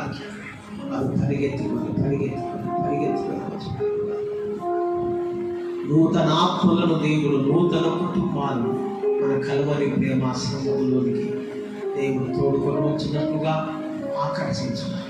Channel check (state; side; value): identical; both; correlation 1.00